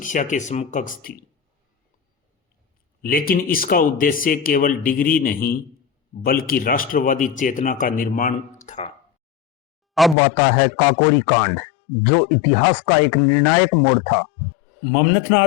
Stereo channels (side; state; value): right; drops out; at 10.2 s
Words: के समकक्ष थी, लेकिन इसका उद्देश्य केवल डिग्री नहीं बल्कि राष्ट्रवादी चेतना का निर्माण था। अब आता है काकोरी कांड, जो इतिहास का एक निर्णायक मोड़ था।